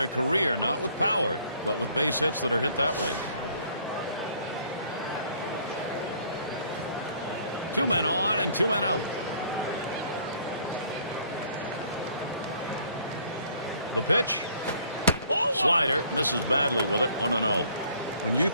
career, not with power, but with base hits that are hit that way. 2 men on and 2 men out. The pitch. Slider misses badly with it. 1-0. When you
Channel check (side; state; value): both; inverted; correlation -0.59